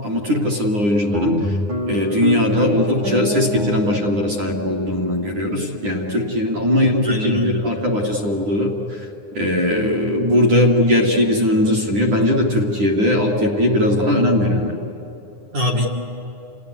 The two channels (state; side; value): late; left; 9.8 ms